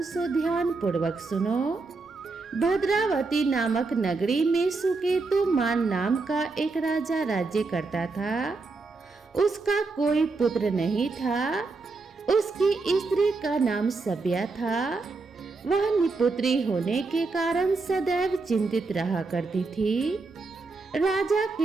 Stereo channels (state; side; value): quieter; left; 3.9 dB